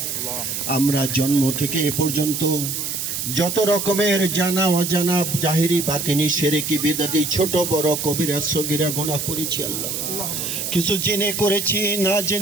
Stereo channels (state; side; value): noise; right; hiss, 3 dB below the sound